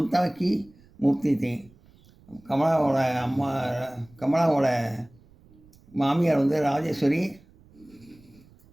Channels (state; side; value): noise; right; rumble, 27 dB below the sound